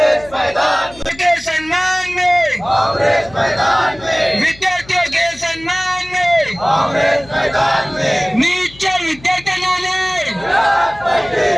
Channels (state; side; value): noise; left; hum, 21 dB below the sound